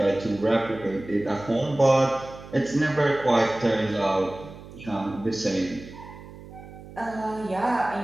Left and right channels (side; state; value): right; noise; hum, 16 dB below the sound